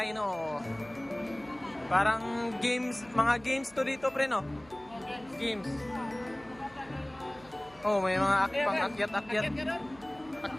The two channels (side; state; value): right; noise; hum, 24 dB below the sound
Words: Parang games, mga games to dito, pre, no? Games. Oh, may mga pang-akyat-akyat.